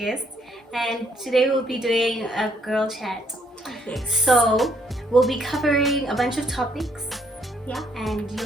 and today we'll be doing a girl chat. Yes. So we'll be covering a bunch of topics, yeah, and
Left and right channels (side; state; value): both; normal; correlation 0.69